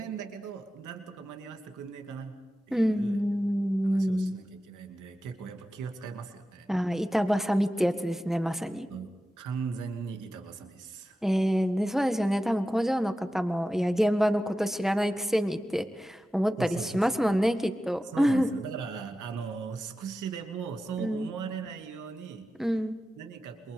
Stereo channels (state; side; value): normal; both; correlation 0.93